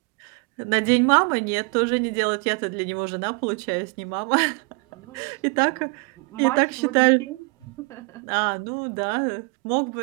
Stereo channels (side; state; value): left; quieter; 31.7 dB